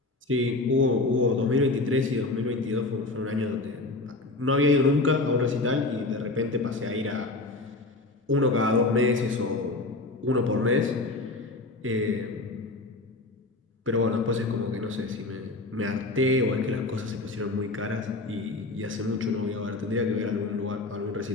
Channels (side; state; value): right; quieter; 3.1 dB